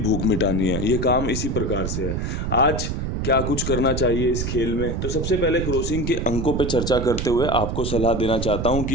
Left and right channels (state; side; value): noise; right; rumble, 2 dB below the sound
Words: मिटानी है। ये काम इसी प्रकार से है। आज क्या कुछ करना चाहिए इस खेल में, तो सबसे पहले क्रॉसिंग के अंकों पर चर्चा करते हुए आपको सलाह देना चाहता हूँ